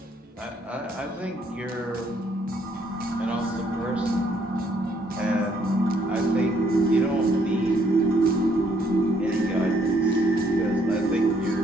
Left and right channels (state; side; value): normal; both; correlation 0.68